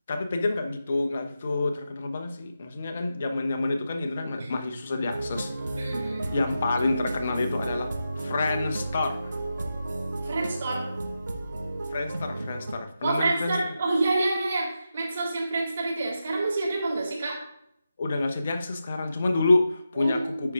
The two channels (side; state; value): both; inverted; correlation -0.88